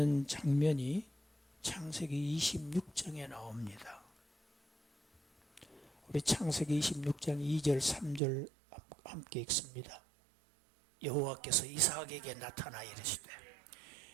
장면이 창세기 26장에 나옵니다. 우리 창세기 26장 2절 3절 함께 읽습니다. 여호와께서 이삭에게 나타나 이르시되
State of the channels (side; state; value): left; drops out; at 8.2 s